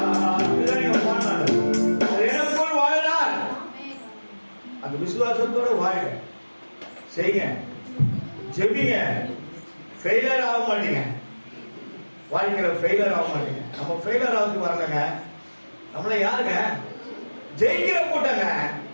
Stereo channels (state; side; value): inverted; both; correlation -1.00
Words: எனக்குள் வாழ்கிறார். அந்த விசுவாசத்தோட வாழுங்க, செய்யுங்க, ஜெபிங்க. ஃபெயிலியர் ஆக மாட்டீங்க, வாழ்க்கையில ஃபெயிலியர் ஆக மாட்டீங்க. நம்ம ஃபெயிலியர் ஆகுது வரலங்க, நம்மள யாருங்க? ஜெயிக்கிற கூட்டங்க,